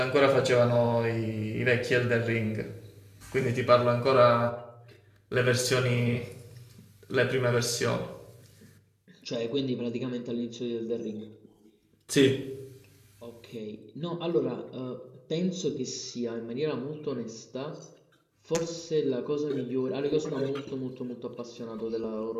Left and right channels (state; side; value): identical; both; correlation 1.00